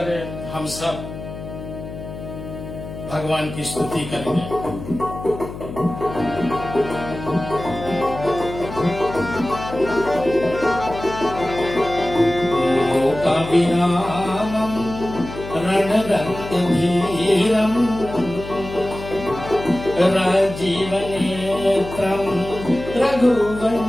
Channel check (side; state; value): left; noise; hum, 11 dB below the sound